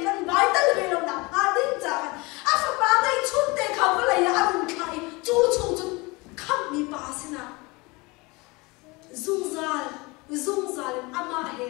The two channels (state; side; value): quieter; right; 25.0 dB